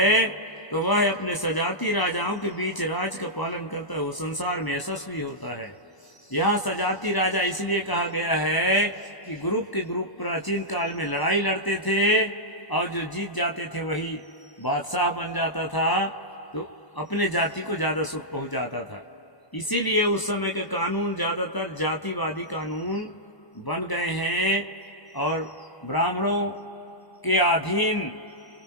तो वह अपने सजाती राजाओं के बीच राज का पालन करता है, वो संसार में यशस्वी होता है। यहाँ सजाती राजा इसलिए कहा गया है कि ग्रुप के ग्रुप प्राचीन काल में लड़ाई लड़ते थे और जो जीत जाते थे वही बादशाह बन जाता था, तो अपने जाति को ज़्यादा सुख पहुँचाता था। इसीलिए उस समय के कानून ज़्यादातर जातिवादी कानून बन गए हैं और ब्राह्मणों के अधीन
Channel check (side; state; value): right; late; 1.0 ms